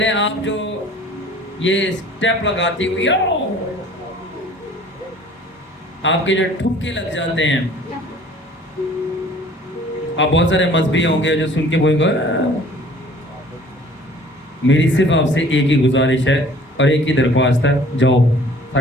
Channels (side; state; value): both; normal; correlation 0.51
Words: आप जो ये स्टेप लगाती हुई, आपके जो ठुमके लग जाते हैं, आप बहुत सारे मजहबी होंगे जो सुन के बोलेंगे, मेरी सिर्फ आपसे एक ही गुजारिश है और एक ही दरख्वास्त है, जाओ